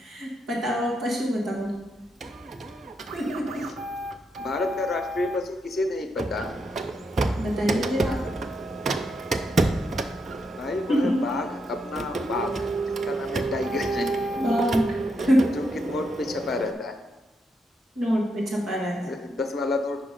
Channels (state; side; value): normal; both; correlation 0.81